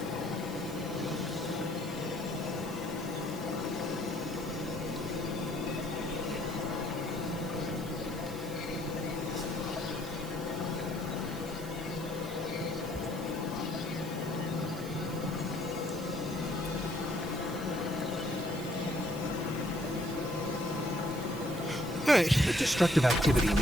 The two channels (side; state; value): right; noise; hiss, 15 dB below the sound